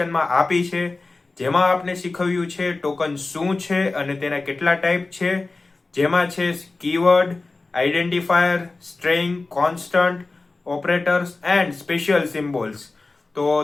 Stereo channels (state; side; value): quieter; right; 3.5 dB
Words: આપી છે, જેમાં આપણે શીખવ્યું છે ટોકન શું છે અને તેના કેટલા ટાઈપ છે, જેમાં છે keyword, identifier, string, constant, operators and special symbols. તો